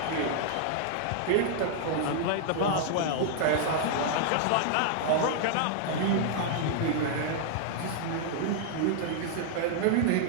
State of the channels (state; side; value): different; both; correlation -0.01